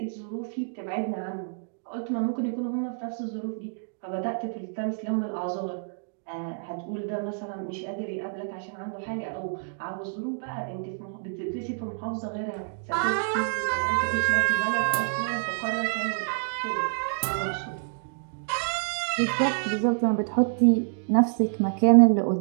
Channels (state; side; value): silent; left; digital silence